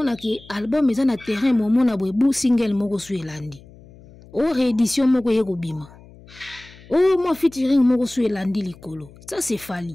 ki album eza na terrain momona boebu single moko suelandi. O réédition moko yeko bima. Oh moi featuring moko suelandi likolo. Ça c'est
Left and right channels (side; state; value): left; noise; hum, 22 dB below the sound